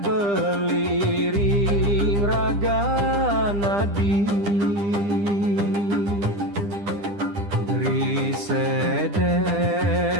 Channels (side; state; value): left; late; 10 ms